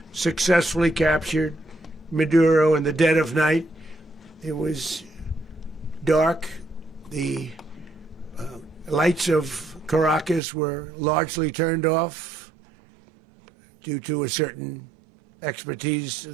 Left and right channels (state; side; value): drops out; left; at 10.4 s